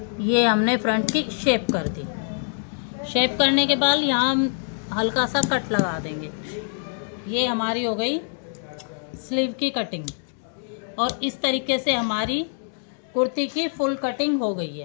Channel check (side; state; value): right; silent; digital silence